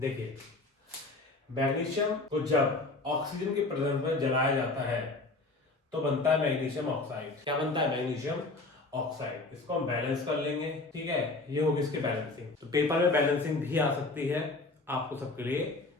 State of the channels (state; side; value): quieter; right; 3.3 dB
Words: मैग्नीशियम को जब ऑक्सीजन की प्रेजेंस में जलाया जाता है तो बनता है मैग्नीशियम ऑक्साइड। क्या बनता है? Magnesium oxide. इसको हम बैलेंस कर लेंगे। ठीक है, ये होगी इसकी बैलेंसिंग। तो पेपर में बैलेंसिंग भी आ सकती है, आपको सबके लिए